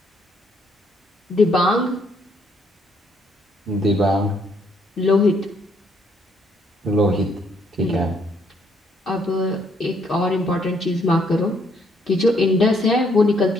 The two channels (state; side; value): normal; both; correlation 0.69